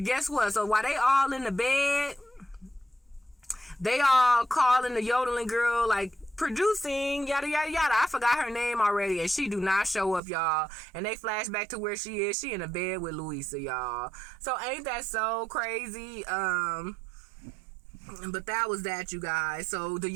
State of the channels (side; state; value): left; drops out; at 10.2 s